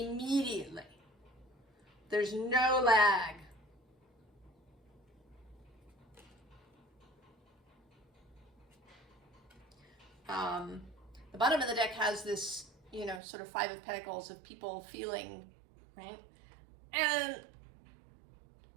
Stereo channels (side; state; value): left; drops out; at 13.2 s